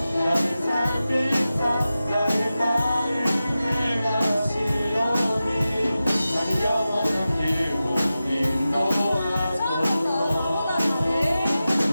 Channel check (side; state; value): both; inverted; correlation -0.94